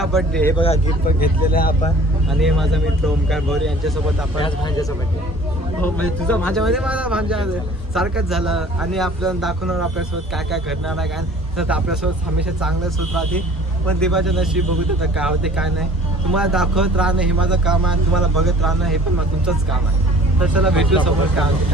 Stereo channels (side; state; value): both; normal; correlation 0.49